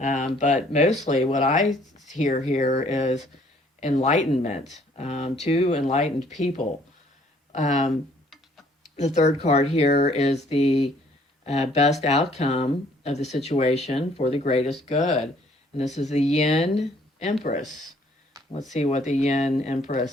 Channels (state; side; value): normal; both; correlation 0.61